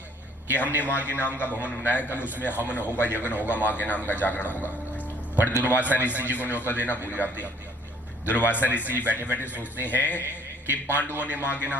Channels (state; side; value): normal; both; correlation 0.60